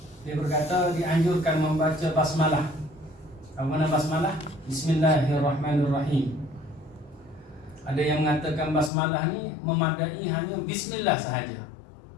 dia berkata dianjurkan membaca basmalah. Apa makna basmalah? Bismillahirrahmanirrahim. Ada yang mengatakan basmalah ni memadai hanya bismillah sahaja.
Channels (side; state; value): right; drops out; at 8.9 s